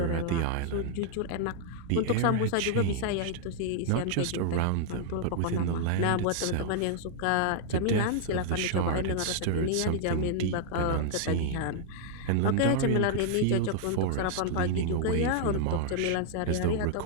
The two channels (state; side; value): different; both; correlation -0.01